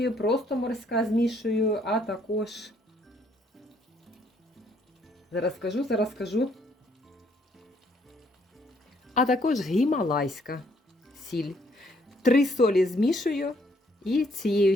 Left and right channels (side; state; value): both; normal; correlation 0.67